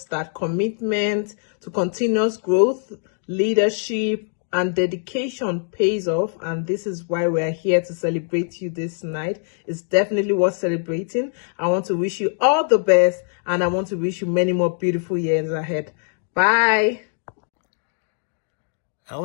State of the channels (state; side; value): silent; right; 64 dB below the other